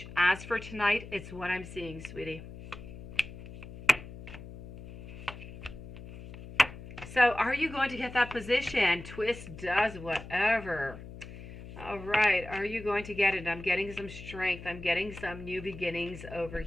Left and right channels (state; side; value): noise; left; hum, 13 dB below the sound